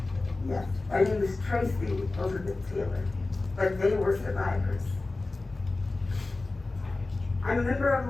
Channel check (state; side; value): quieter; right; 3.3 dB